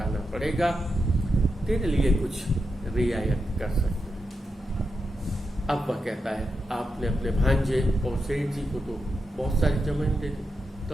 पड़ेगा, तेरे लिए कुछ रियायत कर सकते हैं। अब वह कहता है आपने अपने भांजे और सेठ जी को तो बहुत सारी जमीन दे दी।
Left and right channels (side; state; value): both; normal; correlation 0.87